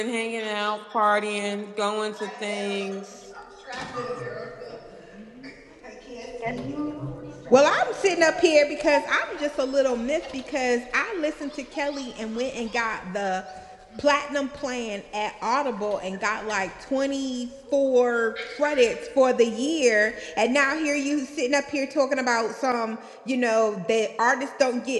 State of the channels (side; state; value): both; identical; correlation 1.00